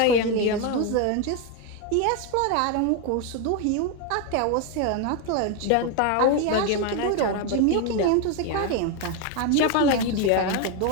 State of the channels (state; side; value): different; both; correlation 0.02